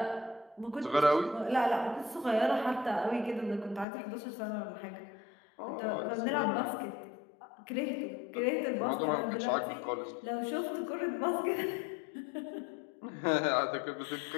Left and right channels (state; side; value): drops out; right; at 3.9 s